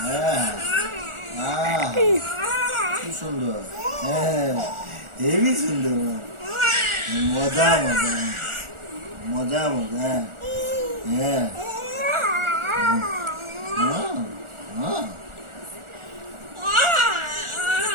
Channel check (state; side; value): late; left; 1.4 ms